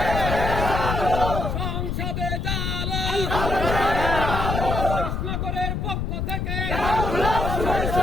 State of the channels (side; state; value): left; noise; rumble, 1 dB below the sound